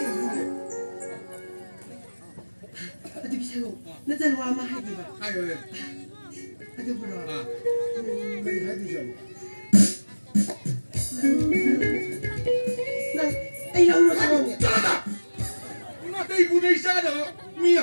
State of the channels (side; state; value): both; inverted; correlation -1.00